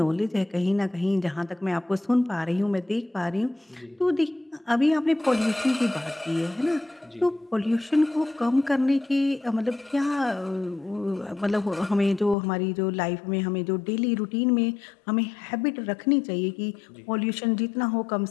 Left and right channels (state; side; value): drops out; right; at 12.4 s